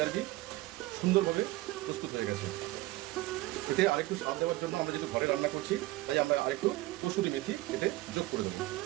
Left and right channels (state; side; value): quieter; left; 18.6 dB